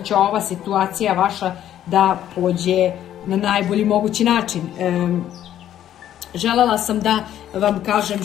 ova situacija vaša da pođe na najbolji mogući način. Želela sam da vam kažem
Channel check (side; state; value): right; quieter; 11.4 dB